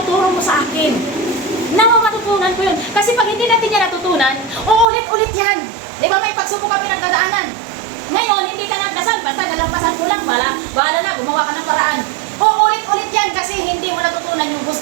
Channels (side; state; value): left; drops out; at 4.9 s